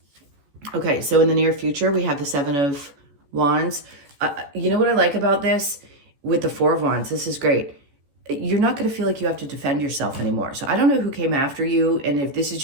Okay, so in the near future, we have the Seven of Wands. You know what I like about this? With the Four of Wands, this is great. You're not going to feel like you have to defend yourself anymore. So I don't know who came after you, and if this is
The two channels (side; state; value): left; late; 14 ms